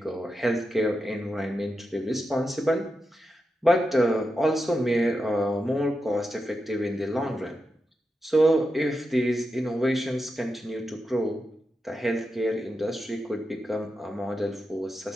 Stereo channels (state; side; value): normal; both; correlation 0.88